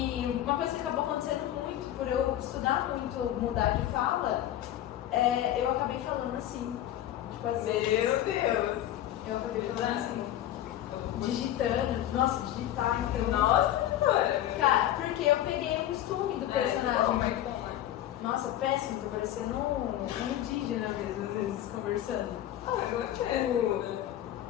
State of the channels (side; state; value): right; quieter; 12.6 dB